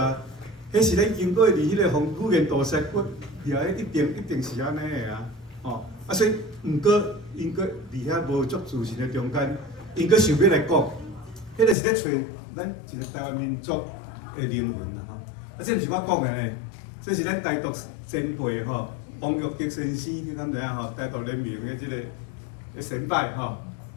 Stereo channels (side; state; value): right; drops out; at 11.8 s